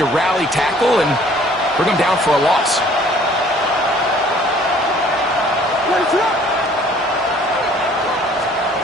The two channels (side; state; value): both; normal; correlation 0.55